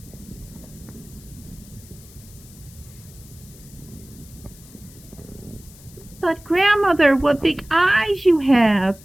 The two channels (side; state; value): left; noise; hiss, 22 dB below the sound